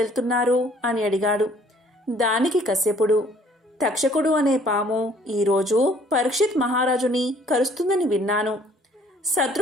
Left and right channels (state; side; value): normal; both; correlation 0.58